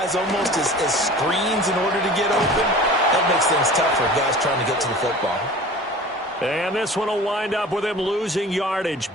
almost as screens in order to get open, That makes things tough for guys trying to get to the football. And this one will wind up with him losing yardage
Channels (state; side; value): normal; both; correlation 0.40